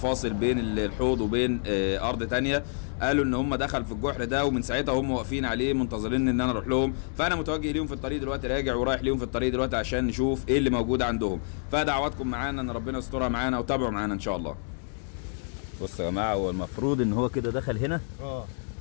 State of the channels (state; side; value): silent; right; 59 dB below the other